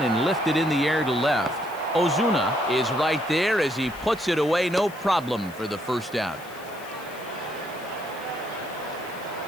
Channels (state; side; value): noise; left; hiss, 21 dB below the sound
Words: and lifted in the air to left. Ozuna is right there as he puts it away, no problem for the first down.